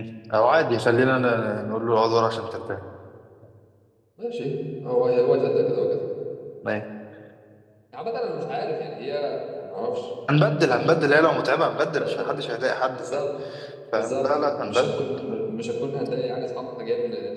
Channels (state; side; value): identical; both; correlation 1.00